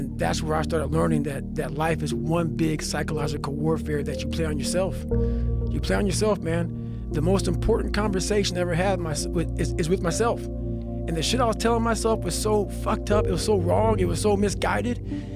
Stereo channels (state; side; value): identical; both; correlation 1.00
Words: that's where I started learning that life is one big psychological warfare that you play on yourself. You play on yourself, man. The most important conversation I ever had is with myself. And the shit I was telling myself was so fucked up, it was so wrong, it was so misguided.